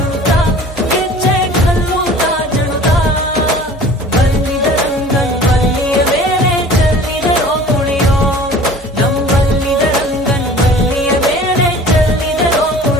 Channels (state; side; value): normal; both; correlation 0.45